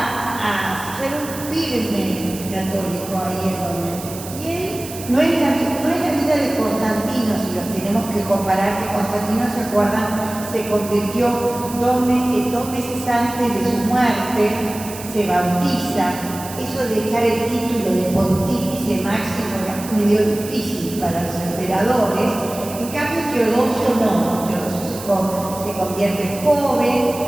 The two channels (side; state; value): right; noise; hiss, 13 dB below the sound